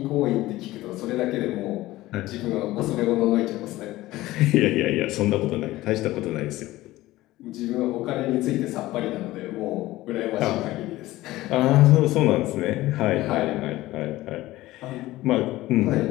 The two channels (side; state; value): right; quieter; 17.2 dB